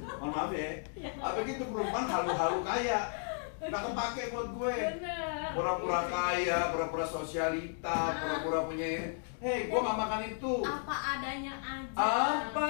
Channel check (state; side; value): silent; right; 55 dB below the other